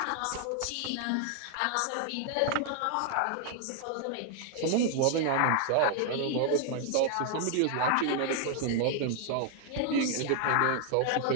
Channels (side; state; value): both; different; correlation 0.00